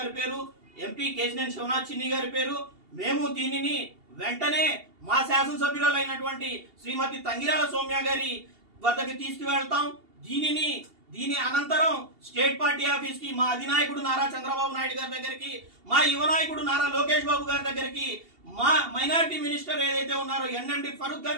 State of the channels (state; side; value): late; left; 2.8 ms